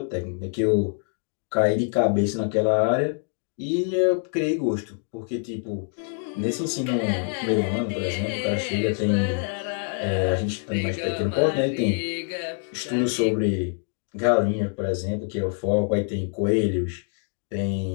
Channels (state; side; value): silent; right; 56 dB below the other